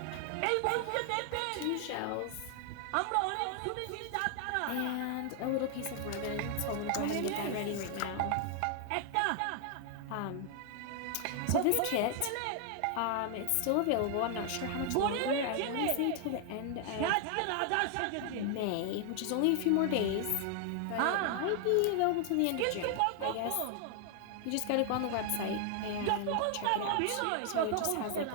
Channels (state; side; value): different; both; correlation 0.00